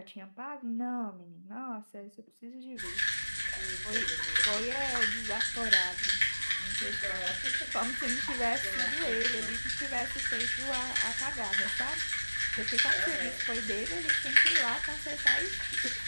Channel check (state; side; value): inverted; both; correlation -1.00